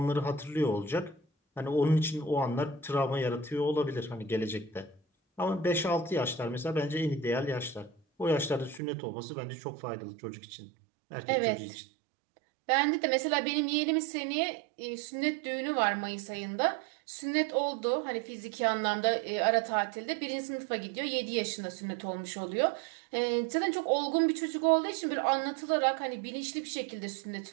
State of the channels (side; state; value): left; drops out; at 8.8 s